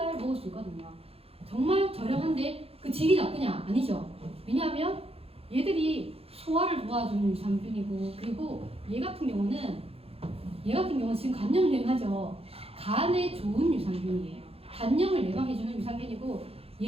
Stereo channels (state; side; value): late; left; 0.28 ms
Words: 먹을 수 있거든요. 정말 저렴한데 그 질이 나쁘냐? 아니죠. 왜냐하면 얘들이 소화를 도와주는 유산균이고, 그리고 얘 같은 경우는 얘 같은 경우는 지금 간염 유행하죠. 간에 좋은 유산균이에요. 간염을 예방해주는 유산균이고